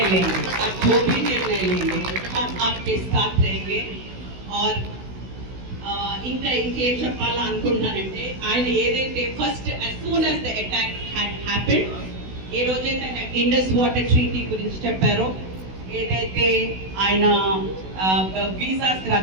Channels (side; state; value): left; late; 16 ms